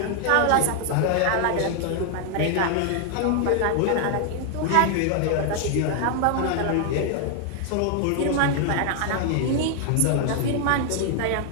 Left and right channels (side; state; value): both; different; correlation 0.00